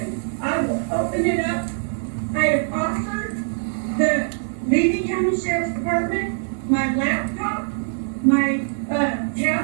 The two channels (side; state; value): left; silent; digital silence